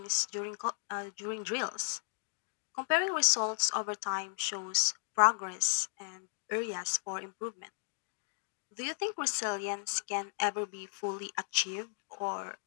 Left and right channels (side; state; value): right; silent; digital silence